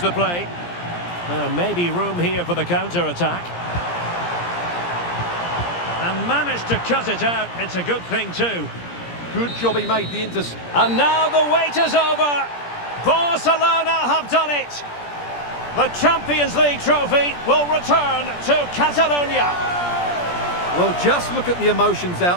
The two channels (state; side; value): late; right; 17 ms